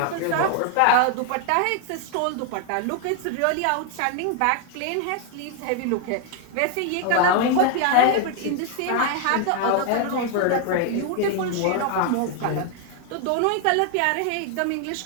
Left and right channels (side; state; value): both; different; correlation 0.01